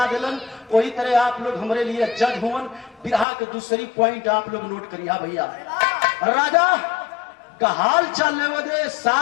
दिलन वही तरह आप लोग हमारे लिए जज हुवन। बिरहा के दूसरी पॉइंट आप लोग नोट करिए भैया। राजा का हाल चाल वदे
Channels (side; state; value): right; drops out; at 3.2 s